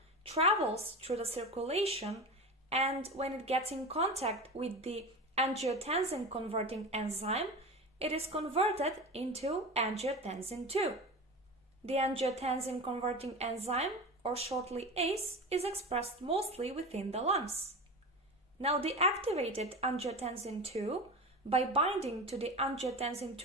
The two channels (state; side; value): normal; both; correlation 0.27